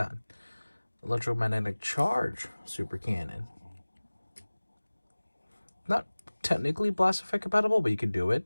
Electromagnetic charge super cannon. Not technically blast effect compatible, but you can do it.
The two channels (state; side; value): inverted; both; correlation -1.00